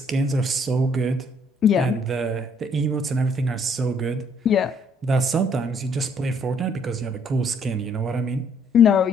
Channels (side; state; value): both; normal; correlation 0.65